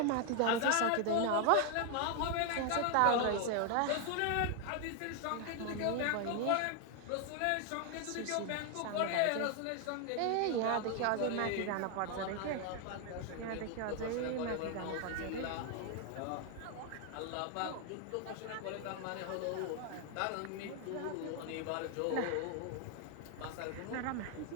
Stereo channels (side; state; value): both; different; correlation 0.00